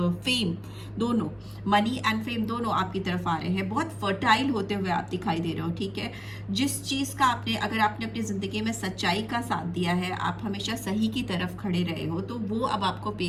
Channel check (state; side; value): identical; both; correlation 1.00